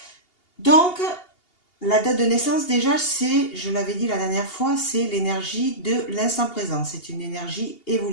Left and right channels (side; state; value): right; late; 2.8 ms